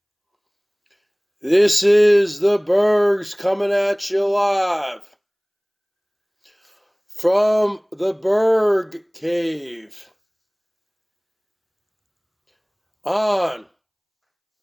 This is the Bergs coming at you live from the Berg Cave on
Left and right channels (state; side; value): identical; both; correlation 1.00